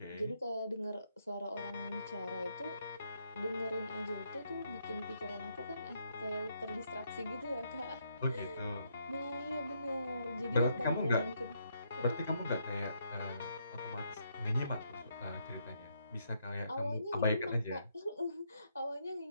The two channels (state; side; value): inverted; both; correlation -0.75